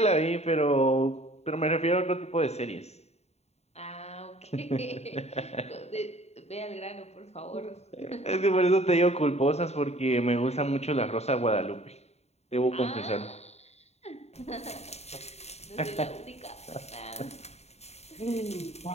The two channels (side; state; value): right; late; 0.31 ms